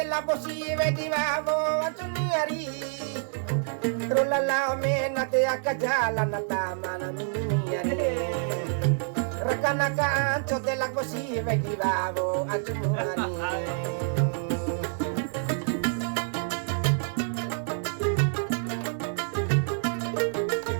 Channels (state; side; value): silent; left; digital silence